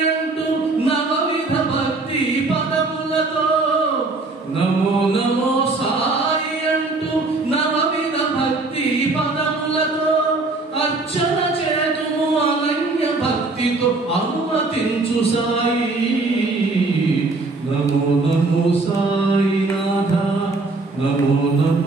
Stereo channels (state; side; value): quieter; left; 3.4 dB